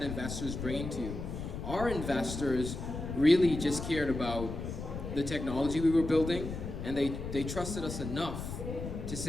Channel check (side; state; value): left; noise; rumble, 6 dB below the sound